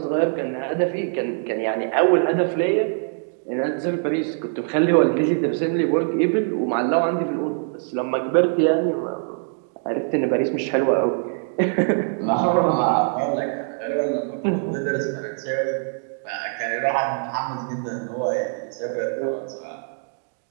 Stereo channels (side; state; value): left; silent; 63 dB below the other